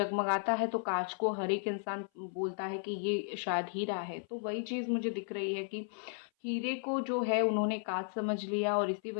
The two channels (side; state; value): right; silent; 55 dB below the other